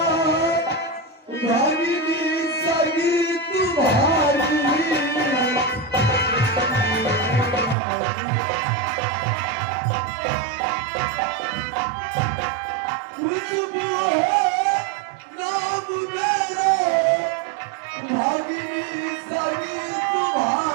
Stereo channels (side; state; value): left; drops out; at 7.8 s